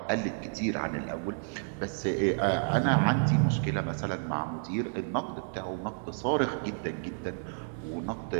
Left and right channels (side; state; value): left; silent; digital silence